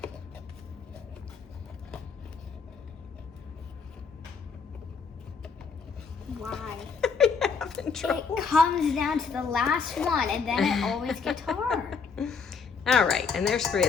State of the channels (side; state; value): right; quieter; 5.4 dB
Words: Why? It comes down to the last one and then it always gets hard. All right, and there's 3